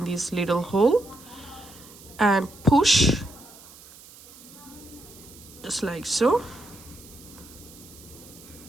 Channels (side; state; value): right; noise; hiss, 20 dB below the sound